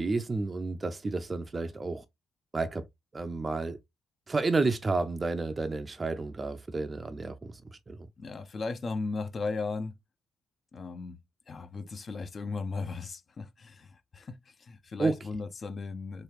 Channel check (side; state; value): both; normal; correlation 0.90